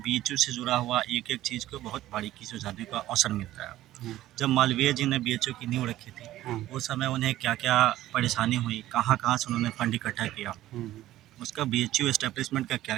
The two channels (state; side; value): quieter; left; 14.6 dB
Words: से जुड़ा हुआ एक-एक चीज़ को बहुत बारीकी से जानने का अवसर मिलता है। हुँ, जब मालवीय जी ने बीएचयू की नींव रखी थी, हुँ, उस समय उन्हें क्या-क्या परेशानी हुई, कहाँ-कहाँ से उन्होंने फंड इकट्ठा किया, हुँ, उसका बीएचयू एस्टेब्लिशमेंट का